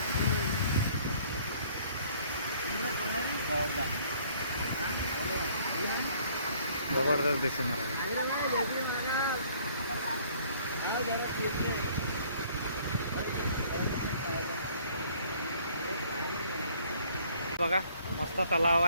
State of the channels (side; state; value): both; inverted; correlation -0.59